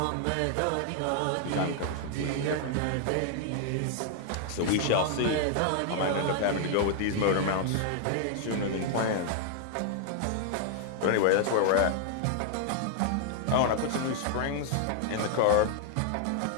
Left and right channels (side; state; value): both; different; correlation 0.00